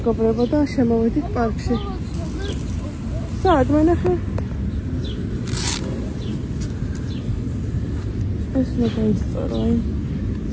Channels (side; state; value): both; identical; correlation 1.00